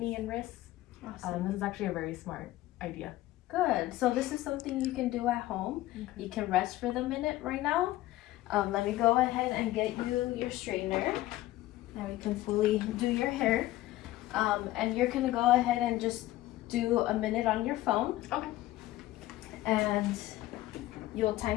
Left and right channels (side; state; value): right; quieter; 16.2 dB